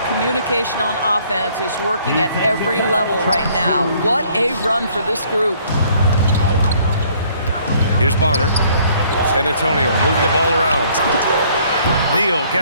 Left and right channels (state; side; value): inverted; both; correlation -0.61